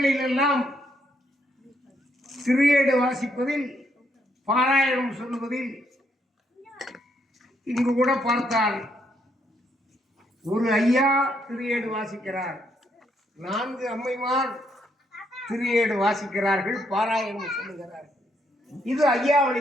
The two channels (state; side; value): normal; both; correlation 0.74